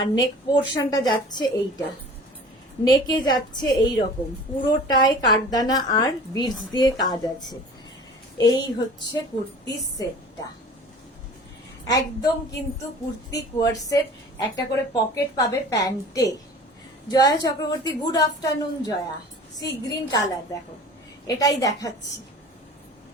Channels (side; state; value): both; normal; correlation 0.43